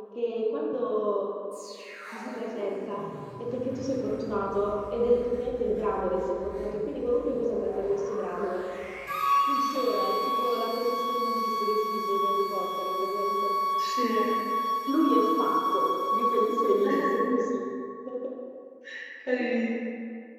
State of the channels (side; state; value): both; identical; correlation 1.00